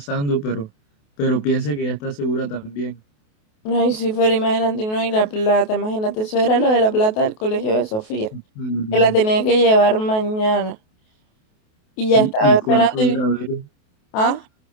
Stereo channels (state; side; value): late; right; 28 ms